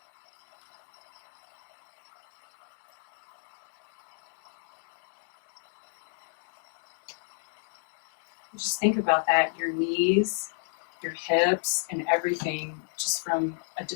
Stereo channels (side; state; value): right; silent; digital silence